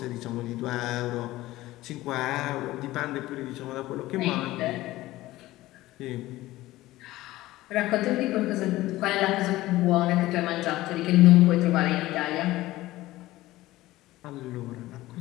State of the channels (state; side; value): quieter; right; 17.2 dB